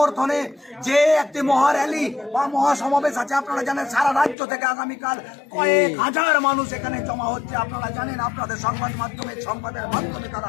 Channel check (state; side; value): drops out; right; at 4.4 s